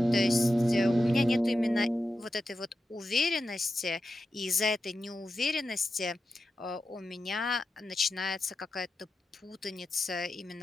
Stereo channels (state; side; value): normal; both; correlation 0.90